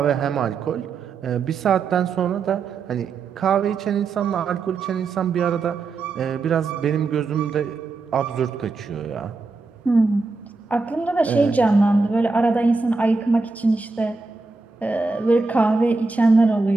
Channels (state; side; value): quieter; left; 4.0 dB